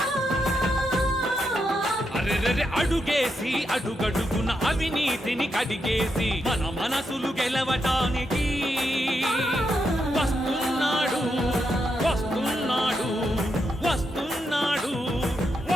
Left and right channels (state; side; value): normal; both; correlation 0.83